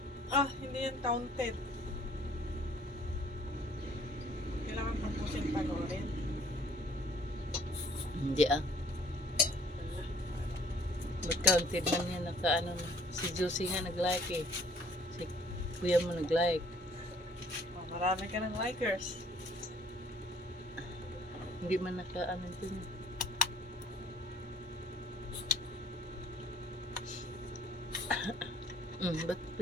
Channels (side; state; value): both; normal; correlation 0.57